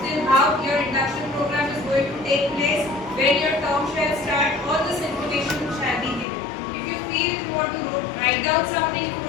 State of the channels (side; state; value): right; drops out; at 6.2 s